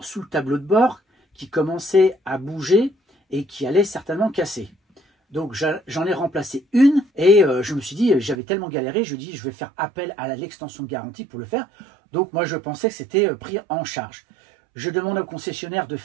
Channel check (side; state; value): left; drops out; at 8.3 s